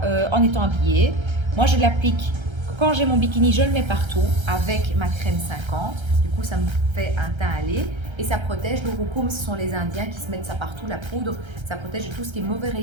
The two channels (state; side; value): late; left; 1.3 ms